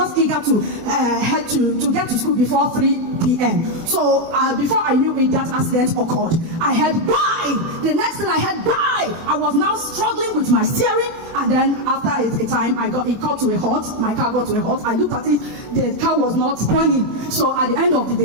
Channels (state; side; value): late; left; 24 ms